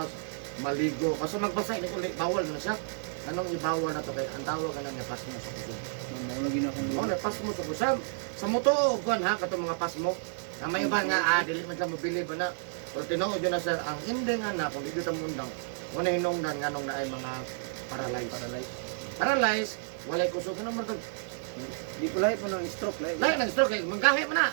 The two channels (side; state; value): left; silent; digital silence